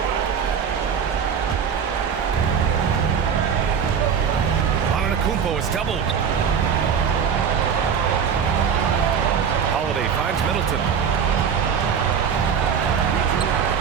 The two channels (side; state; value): left; quieter; 7.2 dB